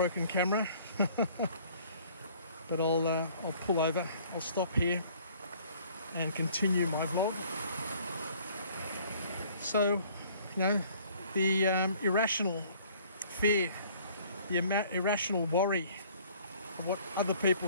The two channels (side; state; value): both; inverted; correlation -0.56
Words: camera. But I'll pull over, I'll stop here and continue my vlog. So, the irrational fear, the irrational worry of what other